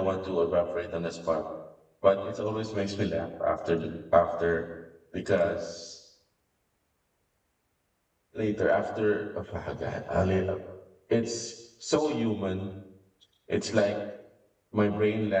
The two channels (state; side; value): identical; both; correlation 1.00